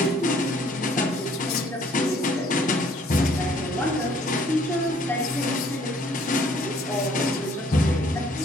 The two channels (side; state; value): both; normal; correlation 0.61